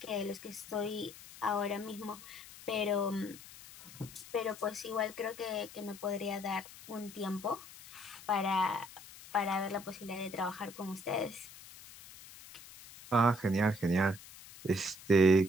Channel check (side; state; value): left; noise; hiss, 17 dB below the sound